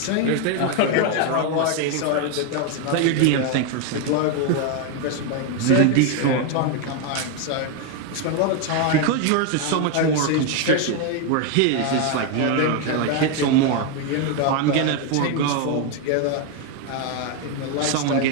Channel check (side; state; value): both; different; correlation 0.01